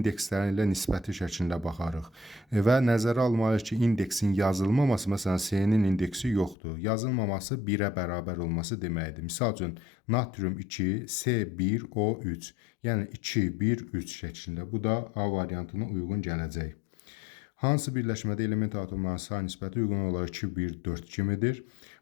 ilə nisbəti şəklində baxarıq və nəzərə almalıyıq ki, indeksin yazılmaması, məsələn, C-nin indeksi yoxdur. Yazılmaması 1-ə bərabər olması deməkdir. Misal üçün, natrium 2, C1, O3, yəni 2, 1, 3 şəklində. Bu da A variantına uyğun gələcək. Hansı birləşmədə element atomlarının say nisbəti uyğun olaraq 2, 1, 4 kimidir?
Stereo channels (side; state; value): right; drops out; at 6.6 s